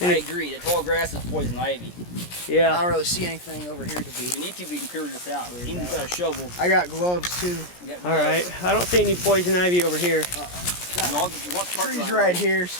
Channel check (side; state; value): right; late; 17 ms